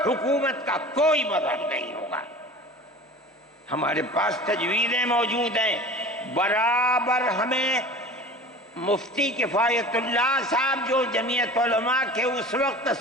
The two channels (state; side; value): normal; both; correlation 0.38